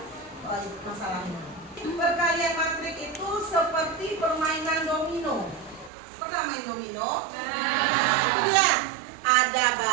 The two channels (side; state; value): left; drops out; at 5.9 s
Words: masalahnya. Perkalian matrik itu seperti permainan domino. Pernah main domino? Nah, itu dia. Ada